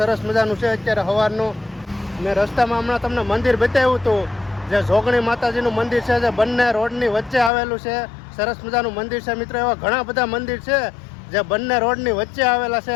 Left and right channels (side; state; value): right; drops out; at 7.5 s